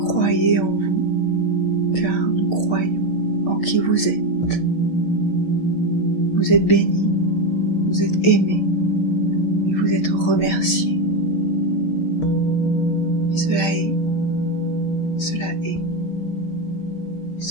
en vous, car nous croyons en qui vous êtes. Vous êtes bénis, vous êtes aimés, et vous êtes remerciés. Et cela est, cela est,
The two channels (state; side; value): late; right; 6.3 ms